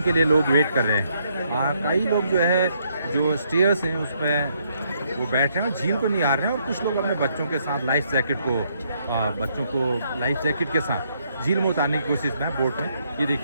के लिए लोग वेट कर रहे हैं। कई लोग जो है जो स्टेयर्स हैं उसमें वो बैठ रहे हैं, झील को निहार रहे हैं और कुछ लोग अपने बच्चों के साथ लाइफ जैकेट को बच्चों को लाइफ जैकेट के साथ झील में उतारने की कोशिश में बोट में। ये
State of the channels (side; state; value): both; inverted; correlation -0.73